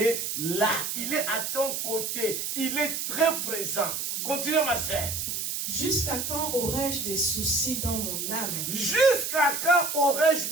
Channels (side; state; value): right; noise; hiss, 3 dB below the sound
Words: là. Il est à ton côté. Il est très présent. Continue, ma sœur. Jusqu'à quand aurais-je des soucis dans mon âme? Jusqu'à quand aurais-je